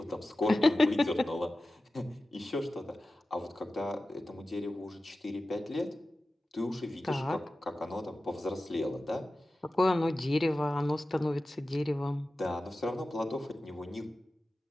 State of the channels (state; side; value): normal; both; correlation 0.95